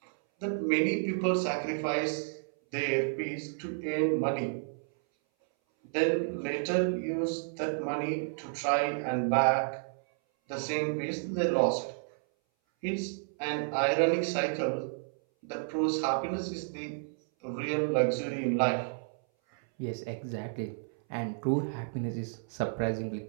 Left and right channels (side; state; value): left; silent; 57 dB below the other